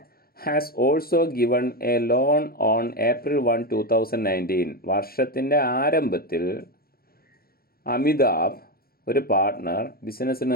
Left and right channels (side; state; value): right; late; 0.44 ms